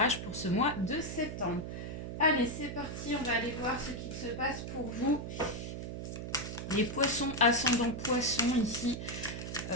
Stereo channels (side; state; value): right; noise; hum, 6 dB below the sound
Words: pour ce mois de septembre. Allez, c'est parti, on va aller voir ce qu'il se passe pour vous. Les poissons ascendant poissons ici